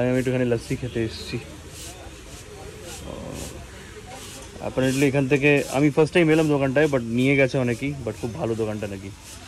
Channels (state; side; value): identical; both; correlation 1.00